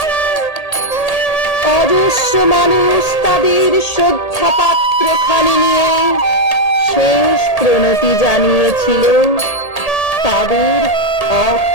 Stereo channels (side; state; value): right; late; 1.8 ms